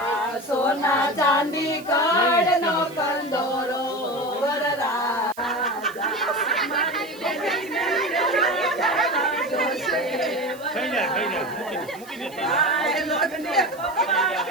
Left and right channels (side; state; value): right; noise; hiss, 21 dB below the sound